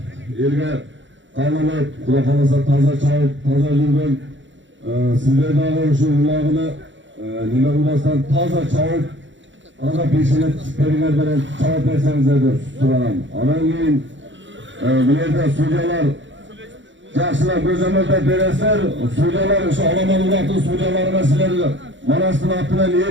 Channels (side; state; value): left; late; 0.54 ms